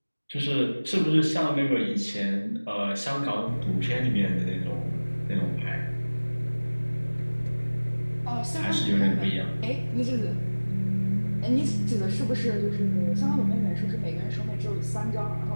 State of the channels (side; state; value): both; inverted; correlation -1.00